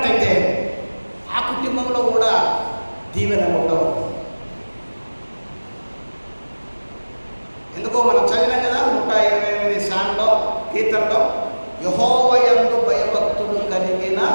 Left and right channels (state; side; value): inverted; both; correlation -1.00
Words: ఆ కుటుంబంలో కూడా దీవెనలు ఉండవు. ఎందుకో మనం చదివాం కదా 128 సాంగ్లో, కీర్తనలో, యెహోవా యందు భయభక్తులు కలిగిన